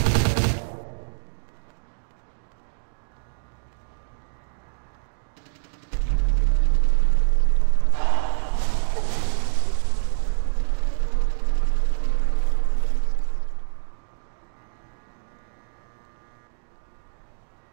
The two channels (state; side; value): silent; left; digital silence